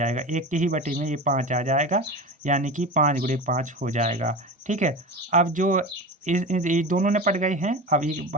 एक के ही बटे में ये 5 आ जाएगा, यानी कि 5×5 हो जाएगा, ठीक है। अब जो ये दोनों निपट गए हैं, अब ये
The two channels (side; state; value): both; normal; correlation 0.28